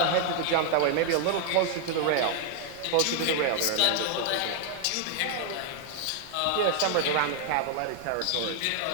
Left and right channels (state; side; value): different; both; correlation 0.00